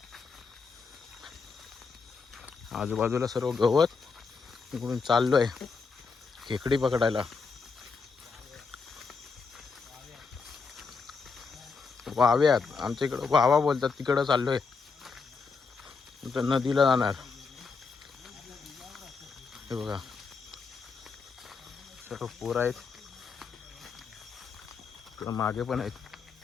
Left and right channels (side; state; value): right; quieter; 4.9 dB